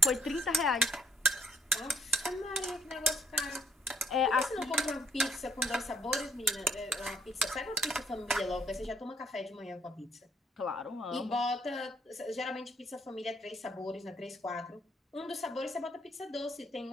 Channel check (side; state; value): both; normal; correlation 0.68